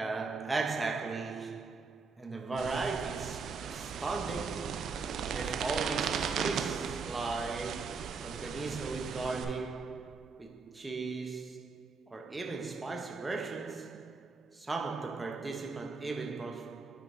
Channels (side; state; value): left; quieter; 4.5 dB